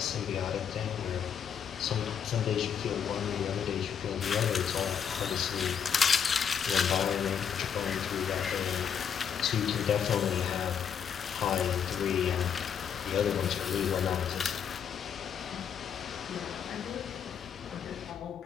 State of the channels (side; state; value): right; quieter; 7.8 dB